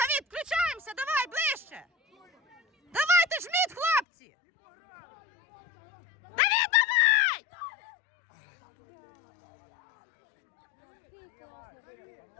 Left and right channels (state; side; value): drops out; right; at 4.0 s